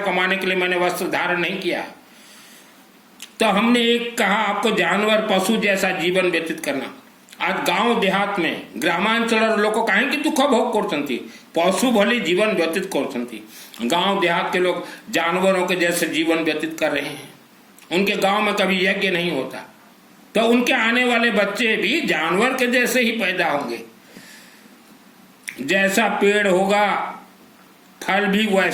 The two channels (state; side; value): identical; both; correlation 1.00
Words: कमाने के लिए मैंने वस्त्र धारण नहीं किया। तो हमने एक कहा आपको जानवर पशु जैसा जीवन व्यतीत करना। आज गांव देहात में ग्रामांचल लोग कहीं दुख भोग करते, पशु भली जीवन व्यतीत करते। गांव देहात के लोग जानवरों के जैसे जीवन व्यतीत कर रहे हैं। उनके गांव में कभी यज्ञ नहीं होता, तो उनके आने वाले बच्चे भी जानवर के जैसे ही पैदा होंगे। जैसा पेड़ होगा फल भी